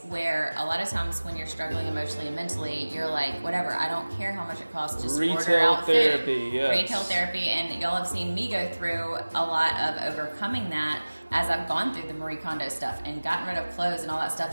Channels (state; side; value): inverted; both; correlation -1.00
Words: where a lot of times when you're struggling emotionally and mentally, you're like, whatever, I don't care how much it costs, just order out therapy, food. yes. Retail therapy, and y'all have seen me go through a lot of overcoming that as I've gone through the Marie Kondo stuff and gotten rid of clothes and all that